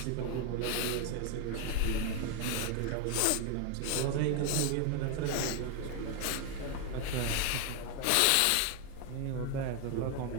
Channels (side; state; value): both; different; correlation 0.01